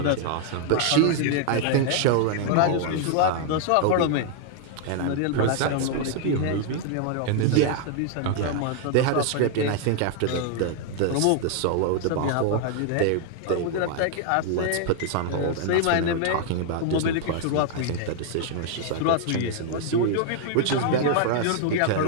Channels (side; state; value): both; different; correlation 0.00